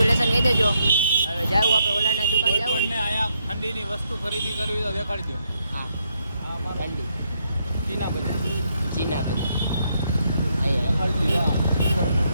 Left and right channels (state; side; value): inverted; both; correlation -0.77